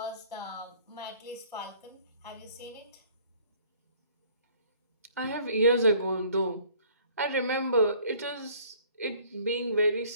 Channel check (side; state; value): both; inverted; correlation -0.56